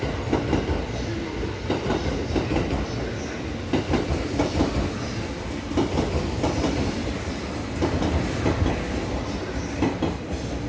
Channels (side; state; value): both; identical; correlation 1.00